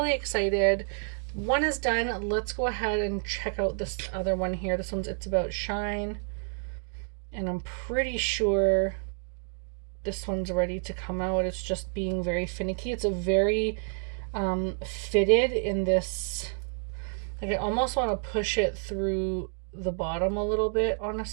excited. One is done. Let's go ahead and check out this other one here. This one's It's About Shine. And I'm pretty sure this one's ready to come out. It's just being very finicky. It's a very fitted in this, like I almost want to push it through the bottom a little bit,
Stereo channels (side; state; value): left; silent; 58 dB below the other